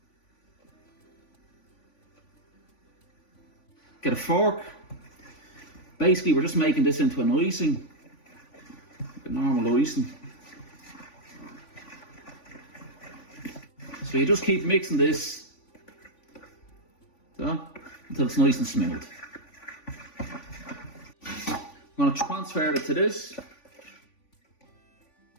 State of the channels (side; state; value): right; late; 3.5 ms